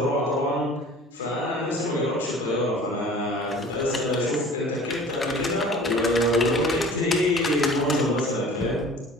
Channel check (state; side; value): normal; both; correlation 0.45